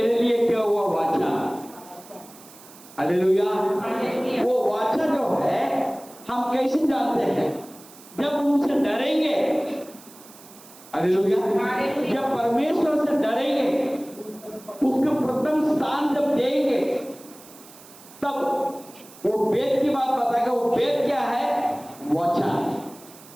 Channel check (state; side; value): noise; right; hiss, 21 dB below the sound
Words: लिए क्या हुआ वाचा। हालेलुया। वो वाचा जो है हम कैसे जानते हैं? जब उनसे डरेंगे। हालेलुया। जब परमेश्वर से डरेंगे, उसको प्रथम स्थान जब देंगे, तब वो वेद की बात बताएगा। वो वेद क्या है? वाचा।